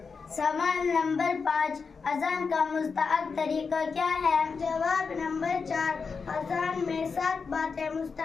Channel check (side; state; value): right; quieter; 5.1 dB